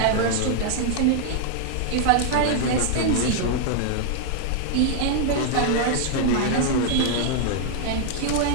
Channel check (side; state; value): both; different; correlation 0.00